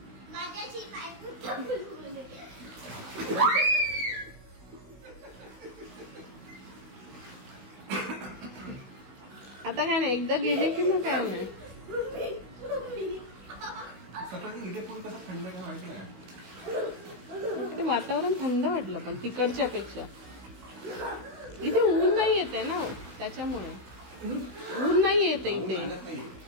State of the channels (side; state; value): left; late; 16 ms